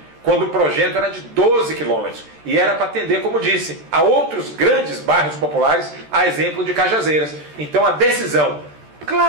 quando o projeto era de 12 quilômetros. E era para atender, como disse, a outros grandes bairros populares, a exemplo de Cajazeiras. Então a decisão,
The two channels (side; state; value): left; late; 13 ms